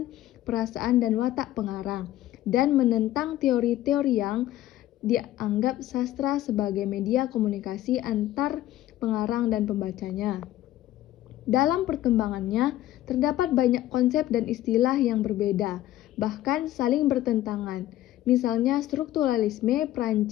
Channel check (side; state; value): right; quieter; 14.1 dB